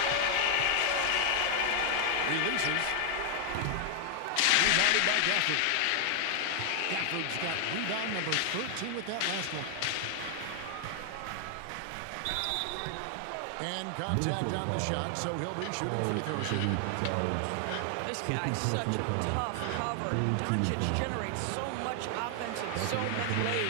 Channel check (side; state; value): both; different; correlation 0.00